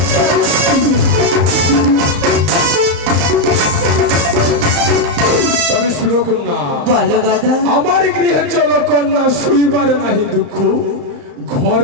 তবে শুনো কন্যা, বলো দাদা। আমার গৃহে চলো কন্যা, শুইবার নাহি দুঃখ,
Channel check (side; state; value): left; late; 34 ms